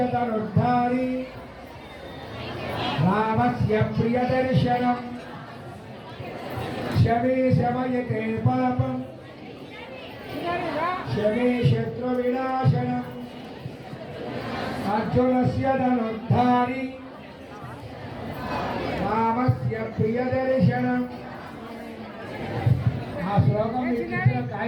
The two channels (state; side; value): identical; both; correlation 1.00